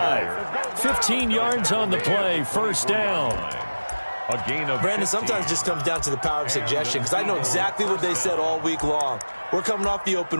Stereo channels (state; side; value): inverted; both; correlation -1.00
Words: 15 yards on the play, 1st down. A gain of Brandon, sometimes just comes down to the power of suggestion, because I know exactly what they said all week long. We're coming off the